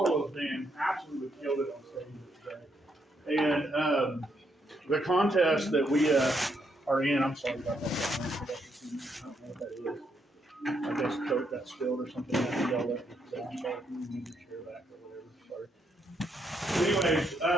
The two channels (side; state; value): both; normal; correlation 0.77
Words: band absolutely killed it on stage yesterday. And the contest that we are in, I'm sorry about that. I don't know what that is. I guess Coke got spilled or something. I think y'all let me say, I'm sorry if you need to share back or whatever. Sorry. Anyways,